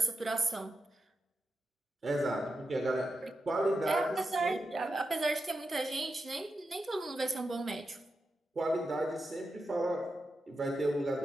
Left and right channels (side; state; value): both; normal; correlation 0.88